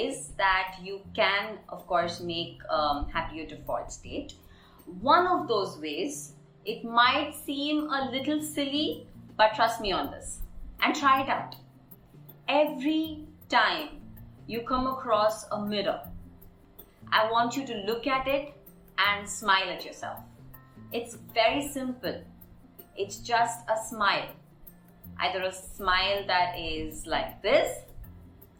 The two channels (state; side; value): identical; both; correlation 1.00